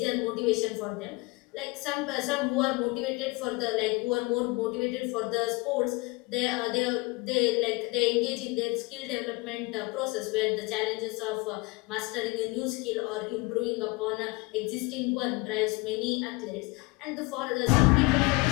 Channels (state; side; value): quieter; right; 25.3 dB